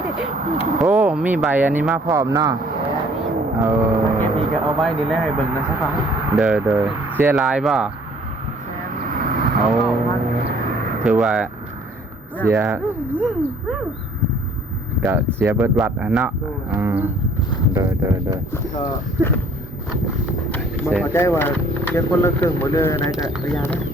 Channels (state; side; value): normal; both; correlation 0.57